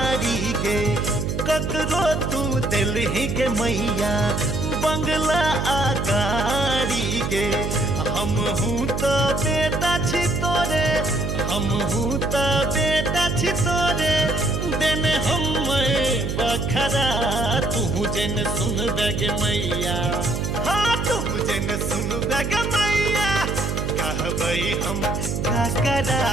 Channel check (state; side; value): noise; right; hum, 2 dB below the sound